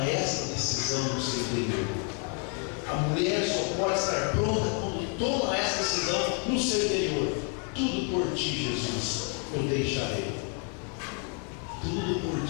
esta decisão no seu interior. A mulher só pode estar pronta quando toma esta decisão no seu interior. Tudo por ti, Jesus, eu deixarei. Tudo por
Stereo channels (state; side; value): quieter; right; 40.0 dB